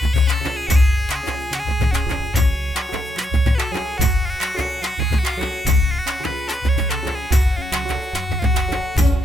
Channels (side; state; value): both; normal; correlation 0.79